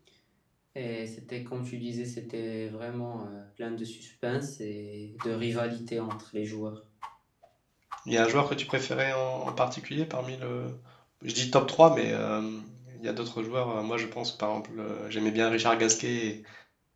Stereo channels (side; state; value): both; identical; correlation 1.00